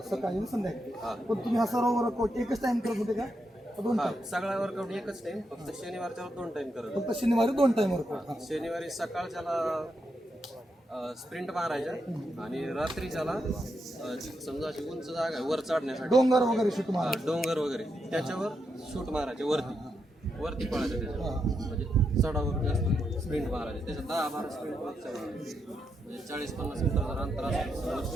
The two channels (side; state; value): both; normal; correlation 0.83